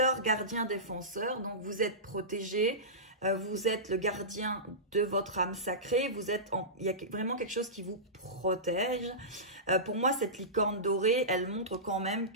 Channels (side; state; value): both; normal; correlation -0.19